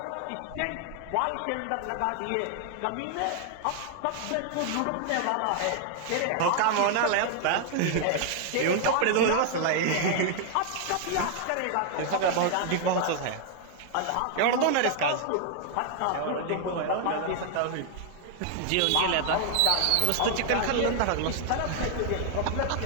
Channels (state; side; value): different; both; correlation 0.00